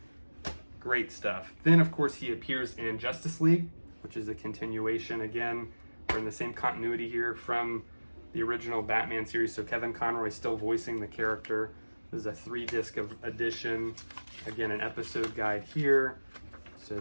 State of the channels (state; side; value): inverted; both; correlation -1.00